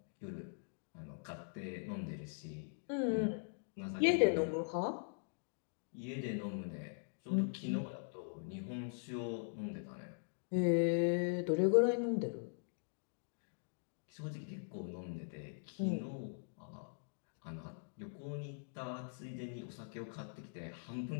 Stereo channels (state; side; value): silent; right; digital silence